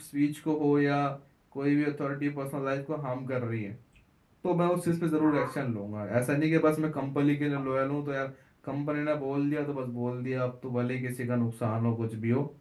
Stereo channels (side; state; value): both; identical; correlation 1.00